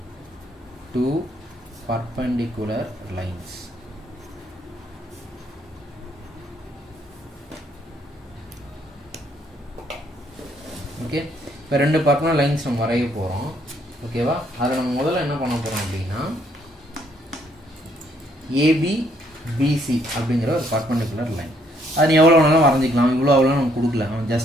two perpendicular lines. Okay. இப்போ 2 பர்பெண்டிகுலர் லைன்ஸ் நம்ம வரைய போகிறோம். ஓகேவா? அதில் நம்ம முதல்ல என்ன பண்ண போகிறோம் அப்படின்னா, ஏபி பிசி அப்படிங்கிற ஒரு பர்பெண்டிகுலர் லைன். அது நீ எவ்வளோ வேணாலும் வரைஞ்சிக்கலாம். இவ்வளோ அவ்வளோ நம்ம கொடுக்கல,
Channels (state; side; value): normal; both; correlation 0.69